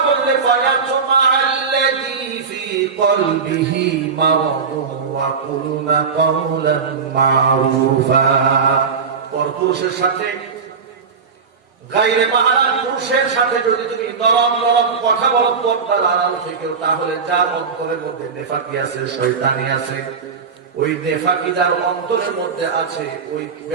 বললে ফায়াতুমা আল্লাযী ফি কলবিহি মারাদুন ওয়া কুলুনা কাওলান মারুফা। পরপুরুষের সাথে, গায়রে মাহরাম পুরুষের সাথে যদি তুমি নরম নরম কথা বলো পর্দার আড়াল থেকেও, তাহলে যার অন্তরের মধ্যে নেফাকি আছে, শয়তানি আছে, ওই নেফাকি যার অন্তরের মধ্যে আছে ওই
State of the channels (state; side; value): quieter; left; 5.6 dB